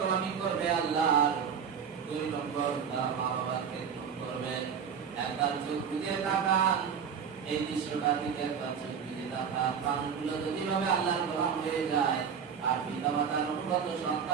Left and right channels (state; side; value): quieter; left; 7.2 dB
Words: করবে আল্লাহর, 2 নম্বর তারা মা বাবার খেদমত করবে। একবার চোখ বুজে তাকান, এই দৃশ্যটা দিকে একবার চোখ বুজে তাকান। মানুষগুলো যদি ভাবে আল্লাহর গোলাম হয়ে যায় আর পিতা মাতার অনুগত